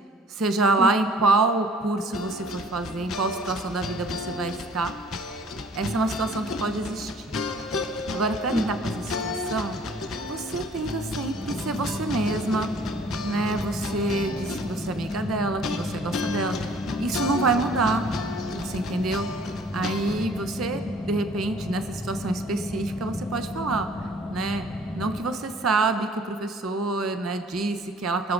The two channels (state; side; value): normal; both; correlation 0.54